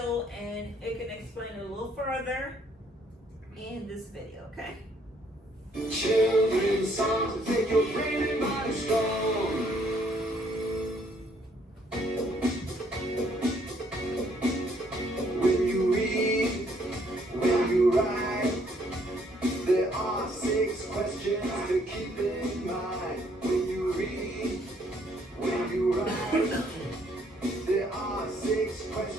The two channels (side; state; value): both; normal; correlation 0.66